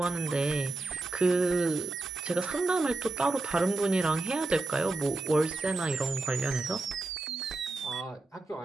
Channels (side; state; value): left; quieter; 3.1 dB